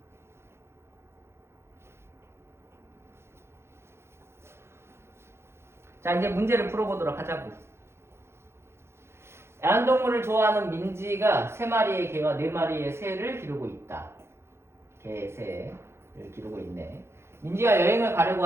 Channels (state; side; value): late; left; 0.12 ms